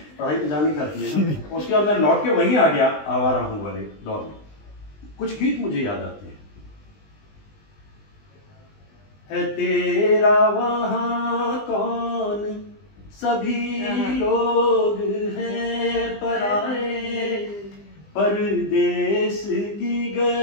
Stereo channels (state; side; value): late; right; 20 ms